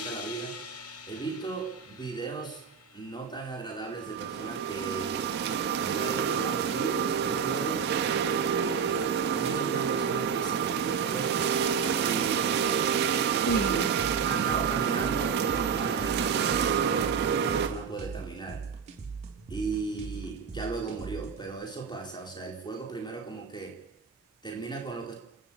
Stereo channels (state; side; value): quieter; left; 6.5 dB